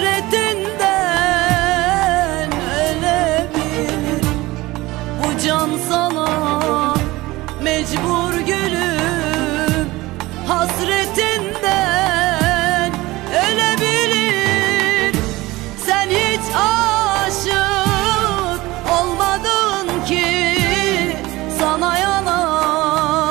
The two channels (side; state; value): left; quieter; 19.7 dB